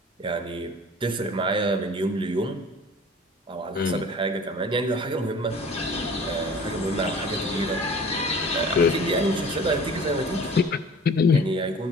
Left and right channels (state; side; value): normal; both; correlation 0.45